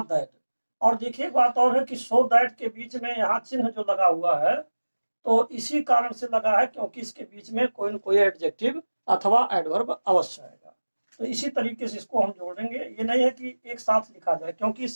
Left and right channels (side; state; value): both; inverted; correlation -1.00